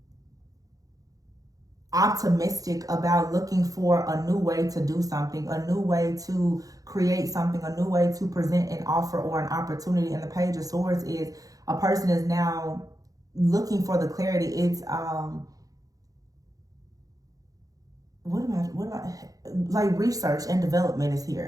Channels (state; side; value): late; left; 0.17 ms